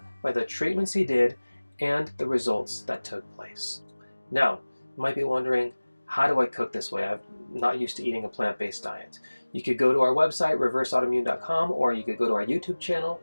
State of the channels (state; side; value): inverted; both; correlation -1.00